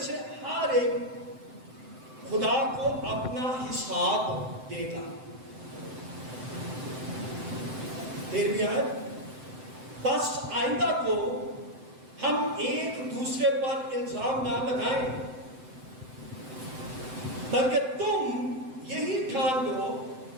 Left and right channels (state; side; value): late; left; 7.8 ms